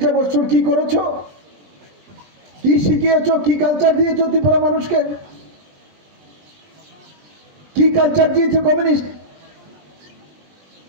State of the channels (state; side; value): late; left; 20 ms